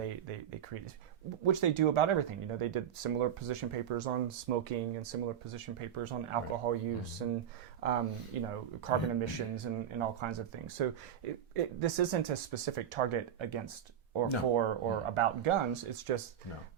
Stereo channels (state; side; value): quieter; left; 9.3 dB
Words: created, which they do about everything. You know, they did similar position papers on smoking and similar position papers on alcohol use and carbon emissions and all kinds of things. So this isn't a specific target against or about guns. It's just